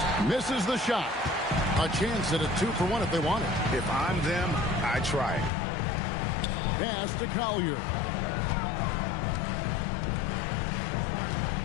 misses the shot. A chance at a 2-for-1 if they want it. If I'm them, I try it. Pass to Collier.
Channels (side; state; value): right; drops out; at 5.5 s